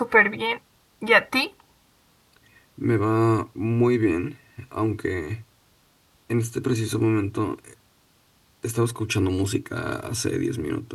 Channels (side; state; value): both; identical; correlation 1.00